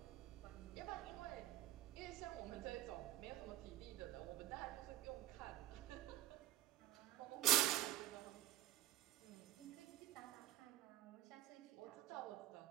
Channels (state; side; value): quieter; left; 14.0 dB